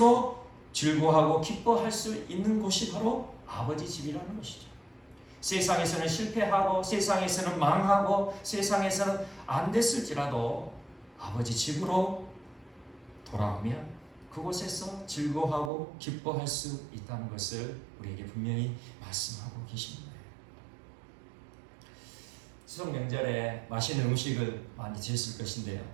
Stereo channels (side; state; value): left; drops out; at 15.7 s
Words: 즐거워하고 기뻐할 수 있는 곳이 바로 아버지 집이라는 것이죠. 세상에서는 실패하고 세상에서는 망하고 세상에서는 안 됐을지라도 아버지 집으로 돌아오면 그곳에서 즐거워하고 기뻐할 수 있다는 것을 우리에게 분명히 말씀하고 계십니다. 추석 명절에 맛있는 음식을 많이 드셨을 것인데요.